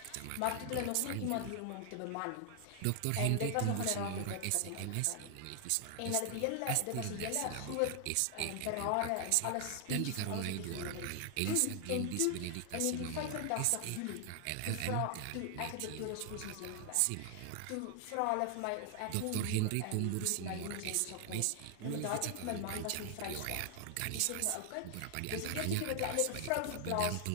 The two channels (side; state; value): both; different; correlation 0.00